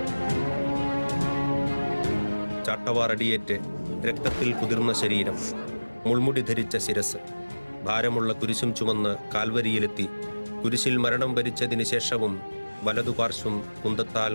ചാട്ടവാറടിയേറ്റ് രക്തത്തിൽ കുതിർന്ന ശരീരം, മുൾമുടി ധരിച്ച ശിരസ്, ഭാരമുള്ള കുരിശും ചുമന്ന് കാൽവരിയിലെത്തി കുരിശിൽ മരണം വരിച്ചതിന് ശേഷവും വലതുപാർശ്വം കുന്തത്താൽ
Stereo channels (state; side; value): inverted; both; correlation -1.00